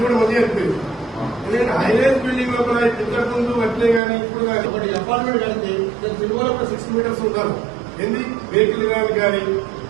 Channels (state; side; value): drops out; left; at 4.0 s